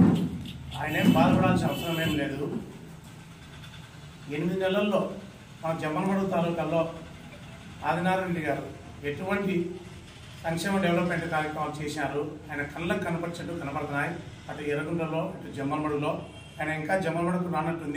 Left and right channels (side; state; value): both; identical; correlation 1.00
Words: ఆయన ఏం బాధపడాల్సిన అవసరం ఏం లేదు. 8 నెలల్లో మన జమ్మలమడుగు తాలూకాలో ఆదినారాయణ రెడ్డి గారు ఎటువంటి సంక్షేమ డెవలప్మెంట్ కార్యక్రమాలు చేశారు. ఆయన కళ్ళకు కనపరిచేట్టు కనపడుతున్నాయి. అటు ఎర్రగుంటలో ఇటు జమ్మలమడుగులో. ఆయన ఇంకా జమ్మలమడుగు